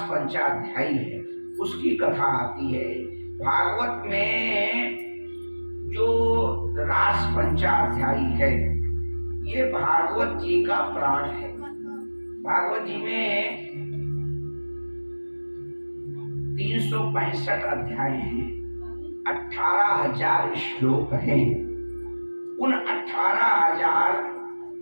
पंचाध्यायी है उसकी कथा आती है। भागवत में जो रास पंचाध्यायी है ये भागवत जी का प्राण है। भागवत जी में 365 अध्याय हैं, 18,000 श्लोक हैं। उन 18,000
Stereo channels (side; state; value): both; inverted; correlation -1.00